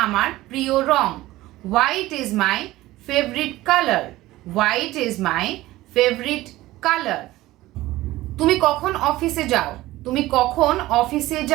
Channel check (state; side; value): quieter; left; 17.2 dB